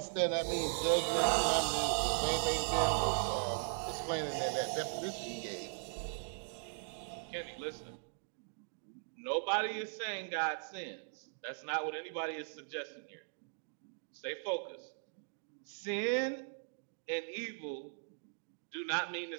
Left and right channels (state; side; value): silent; left; digital silence